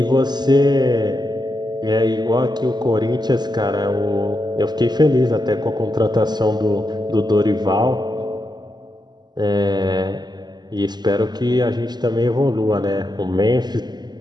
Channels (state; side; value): late; left; 0.21 ms